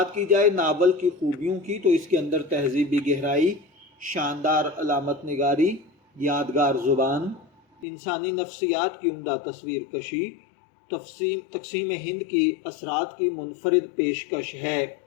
کی جائے ناول کی خوبیوں کی تو اس کے اندر تہذیبی گہرائی، شاندار علامت نگاری، یادگار زبان، انسانی نفسیات کی عمدہ تصویر کشی، تقسیم ہند کی اثرات کی منفرد پیشکش ہے۔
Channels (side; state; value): right; drops out; at 7.9 s